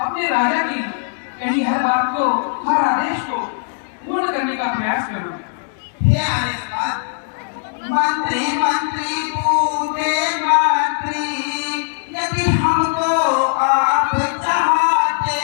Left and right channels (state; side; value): silent; right; 66 dB below the other